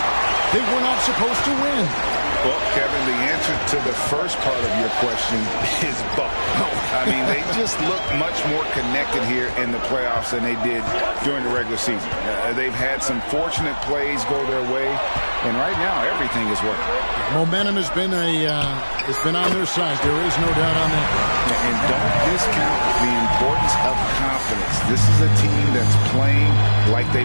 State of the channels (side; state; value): both; inverted; correlation -1.00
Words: they were not supposed to win? Well, Kevin, the answer to the first part of your question is both. I mean, they just look much more connected here in the playoffs than they did during the regular season. They've had some fortunate plays go their way, and right now everything is working. Momentum has been on their side. There is no doubt on that. And don't discount the importance of confidence. This is a team that's playing like they